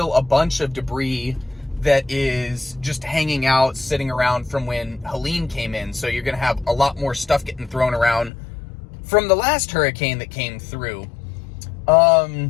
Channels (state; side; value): drops out; right; at 8.3 s